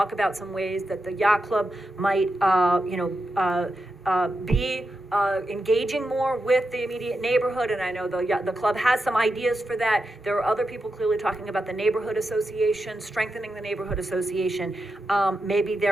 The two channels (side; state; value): both; normal; correlation 0.88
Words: about some ways that the yacht club might, be engaging more with the immediate neighborhood, and I know the club has some ideas for that. There are other people clearly talking about the neighborhood association, strengthening the neighborhood association. Maybe